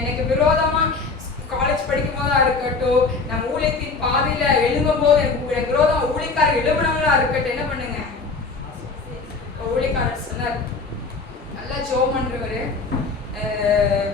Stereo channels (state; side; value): quieter; right; 4.3 dB